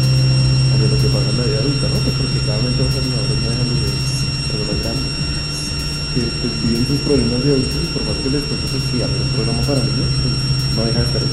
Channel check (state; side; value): identical; both; correlation 1.00